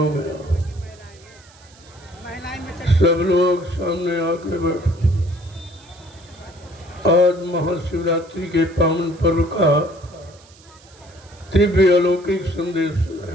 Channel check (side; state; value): right; noise; hiss, 26 dB below the sound